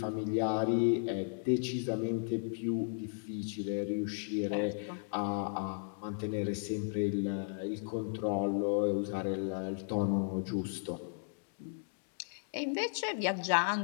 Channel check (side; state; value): right; silent; digital silence